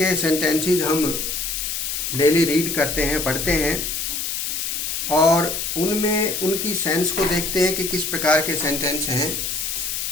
सेंटेंसेस हम डेली रीड करते हैं, पढ़ते हैं और उनमें उनकी सेंस को देखते हैं कि किस प्रकार के सेंटेंस हैं।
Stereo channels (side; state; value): left; noise; hiss, 2 dB below the sound